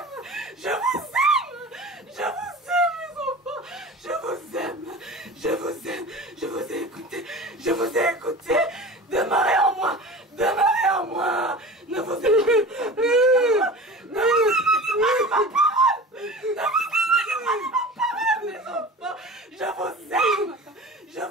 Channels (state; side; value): normal; both; correlation 0.35